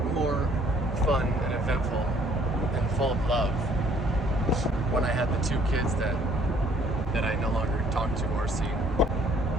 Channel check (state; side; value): normal; both; correlation 0.61